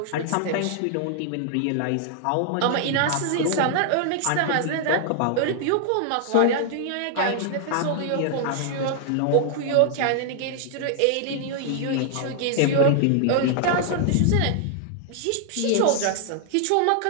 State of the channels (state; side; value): different; both; correlation 0.00